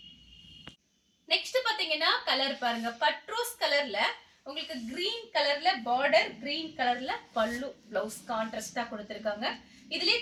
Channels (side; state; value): both; identical; correlation 1.00